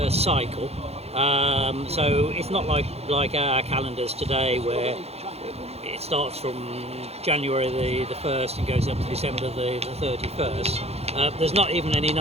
cycle. So it's not like our calendars today, where it starts from January the 1st and goes up to December the 31st. There's not even any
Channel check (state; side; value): late; left; 0.30 ms